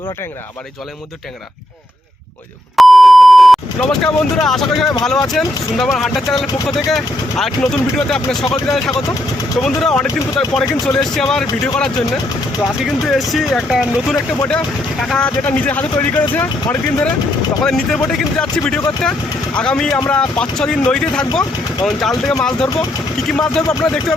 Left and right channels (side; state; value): both; normal; correlation 0.77